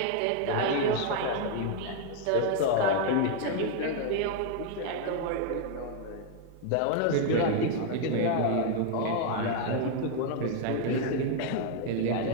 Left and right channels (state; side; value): different; both; correlation 0.00